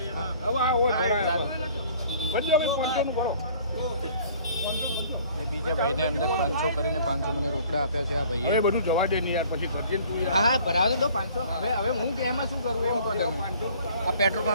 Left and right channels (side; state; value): both; inverted; correlation -0.53